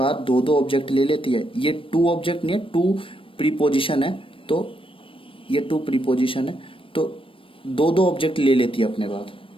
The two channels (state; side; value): late; right; 0.25 ms